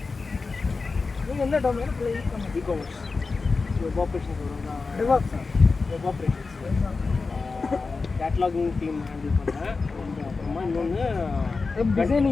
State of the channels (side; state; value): right; quieter; 4.2 dB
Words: நீங்கள் என்ன டொமைன் ப்ளே பண்ணுங்க? இ-காமர்ஸ் வெப் ஆப்ரேஷன்ஸ் வரும்னா டிவாப்ஸா? வெப் ஆப்ரேஷன்ஸ் கேட்லாகிங் டீம் ஹேண்டில் பண்ணேன். அப்புறமா இன்னொன்று வெப்